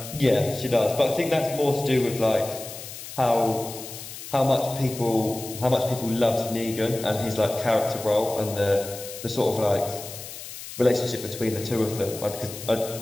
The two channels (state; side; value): noise; left; hiss, 12 dB below the sound